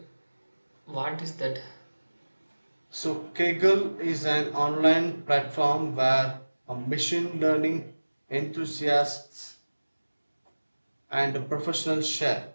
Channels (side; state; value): both; inverted; correlation -1.00